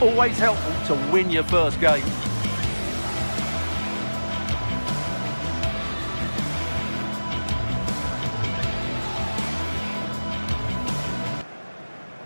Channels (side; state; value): both; inverted; correlation -1.00